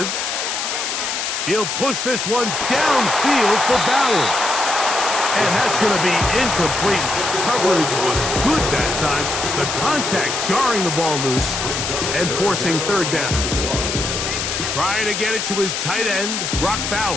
He'll push this one downfield for Bowers. And that's going to be incomplete. Coverage was good that time. The contact jarring the ball loose and forcing third down. Trying to get it to his tight end, Brock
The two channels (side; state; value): left; noise; hiss, 2 dB below the sound